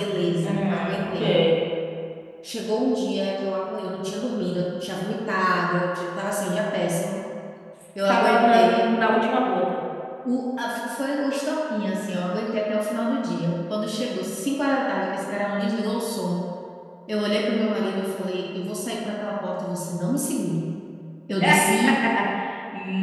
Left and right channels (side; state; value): both; identical; correlation 1.00